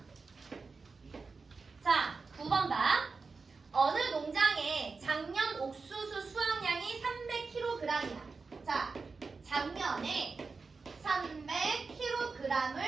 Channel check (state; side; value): quieter; left; 4.4 dB